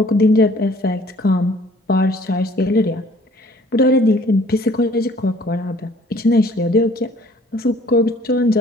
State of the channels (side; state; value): both; normal; correlation 0.56